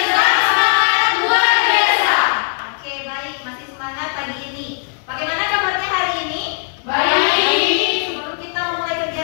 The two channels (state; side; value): silent; right; 62 dB below the other